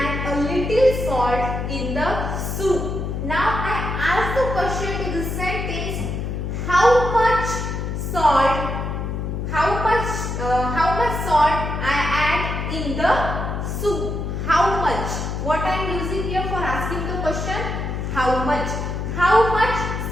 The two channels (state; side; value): noise; left; hum, 3 dB below the sound